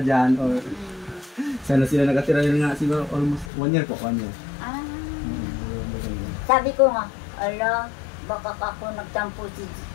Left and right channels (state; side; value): drops out; right; at 3.5 s